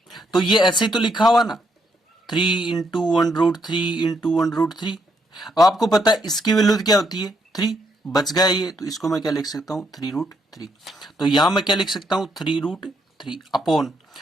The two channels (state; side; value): normal; both; correlation 0.75